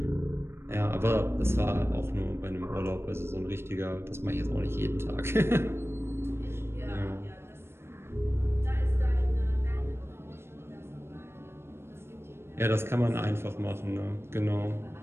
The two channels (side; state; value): left; late; 0.12 ms